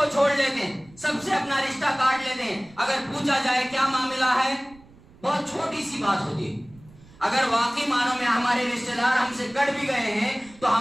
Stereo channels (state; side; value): noise; right; rumble, 25 dB below the sound